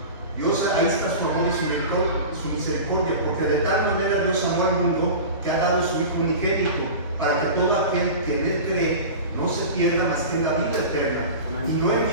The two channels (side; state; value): both; inverted; correlation -0.32